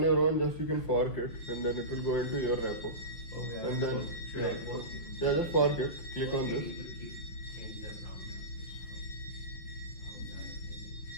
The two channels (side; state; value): right; late; 6.3 ms